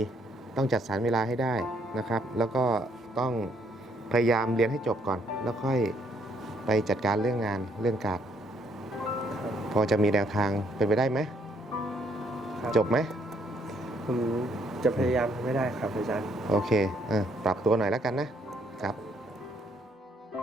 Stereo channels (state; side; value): normal; both; correlation 0.69